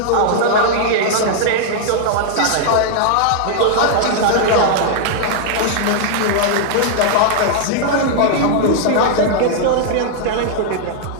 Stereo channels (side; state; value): both; different; correlation -0.01